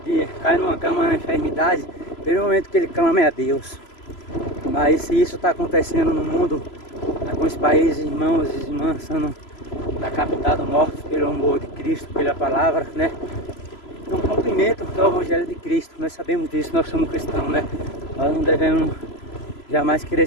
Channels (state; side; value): late; right; 3.0 ms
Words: numa cama na enfermidade, pelo momento que ele clama é a Deus. Mas se isso está acontecendo no mundo, com os países, irmãos e irmãs sendo decapitados, mortos pelo amor de Cristo, pela palavra, né? É um cumprimento do Evangelho de Cristo. Nós sabemos disso, nós somos cristãos, né? Nós não devemos jamais querer